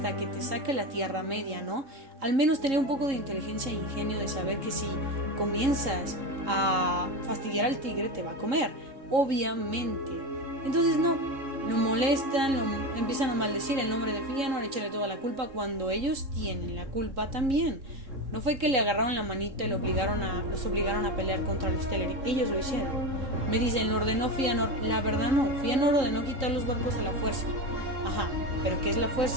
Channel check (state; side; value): late; left; 3.7 ms